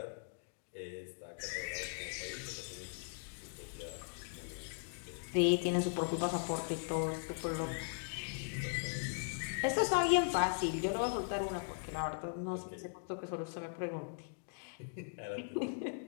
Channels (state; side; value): silent; right; digital silence